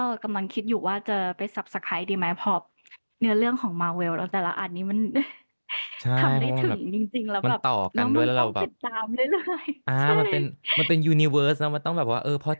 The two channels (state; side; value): inverted; both; correlation -1.00